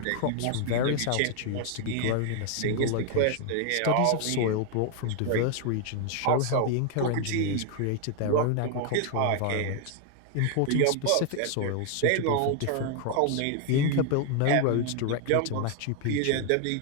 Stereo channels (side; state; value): both; different; correlation 0.00